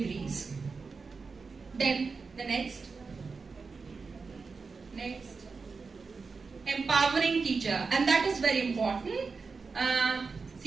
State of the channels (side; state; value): left; quieter; 4.7 dB